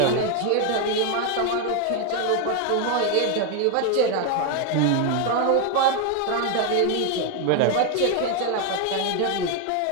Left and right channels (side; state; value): both; different; correlation 0.01